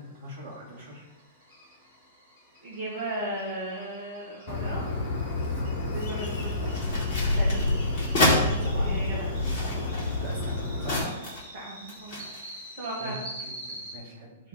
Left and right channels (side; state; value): both; inverted; correlation -0.47